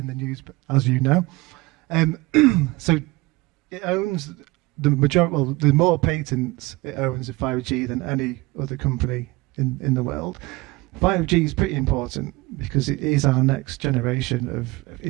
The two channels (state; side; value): quieter; left; 21.9 dB